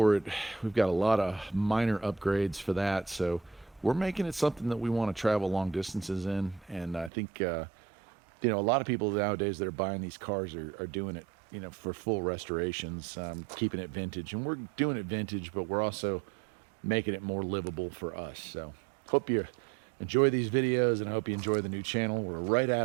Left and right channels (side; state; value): left; drops out; at 7.1 s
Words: it. We've got a lot of minor upgrades for that. So we're making it something that we want to travel long distances in. And I think, you know, a lot of people nowadays that are buying these cars are doing it, you know, for full restorations, keeping it vintage. And we're doing it vintage, but we're also making it more livable for us. So hope you enjoy these videos, and I hope you enjoy the new channel. We're right at